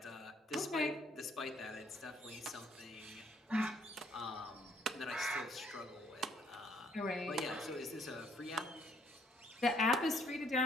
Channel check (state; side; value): normal; both; correlation 0.65